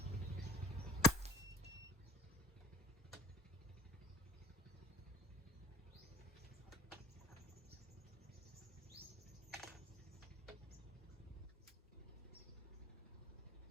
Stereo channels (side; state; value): both; normal; correlation 0.45